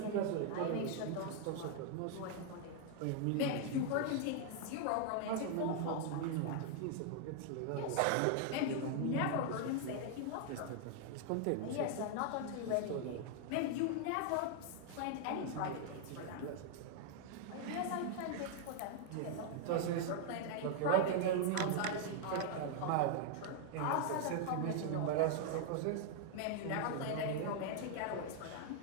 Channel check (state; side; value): different; both; correlation 0.00